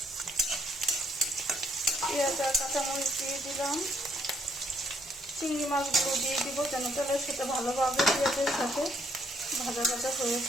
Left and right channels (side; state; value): both; normal; correlation 0.70